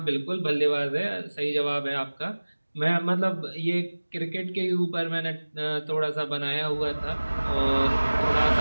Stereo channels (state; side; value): inverted; both; correlation -1.00